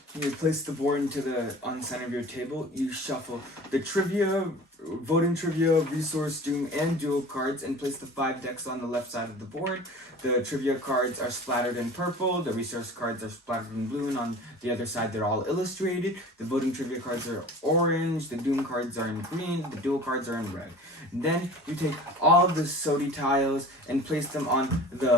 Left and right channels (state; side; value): normal; both; correlation 0.41